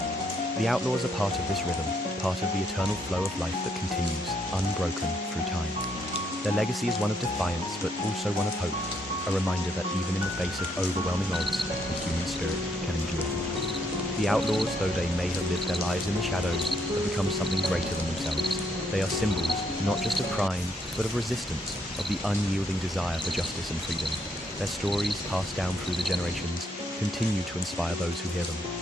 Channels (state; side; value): normal; both; correlation 0.73